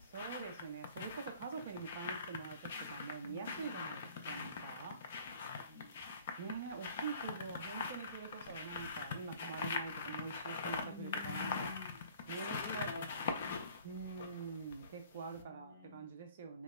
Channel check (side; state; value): both; inverted; correlation -0.52